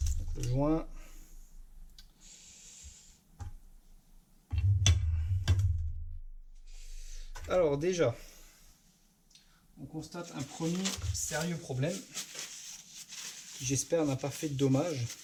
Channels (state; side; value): identical; both; correlation 1.00